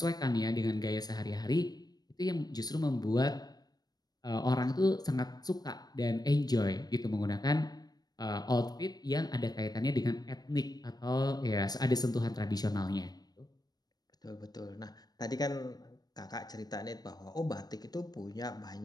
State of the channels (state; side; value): late; right; 0.19 ms